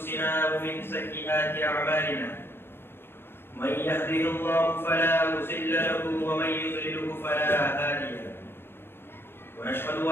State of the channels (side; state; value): right; late; 0.11 ms